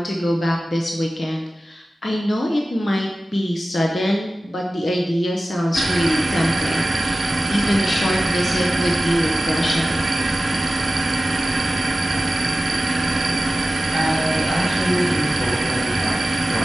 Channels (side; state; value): both; normal; correlation 0.95